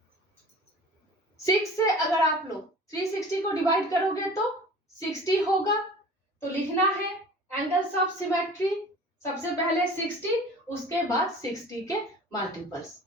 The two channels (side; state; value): both; normal; correlation 0.43